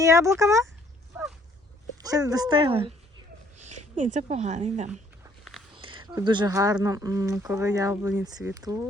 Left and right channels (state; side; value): normal; both; correlation 0.63